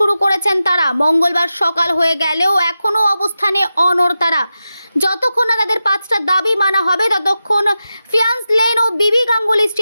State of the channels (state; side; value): inverted; both; correlation -0.92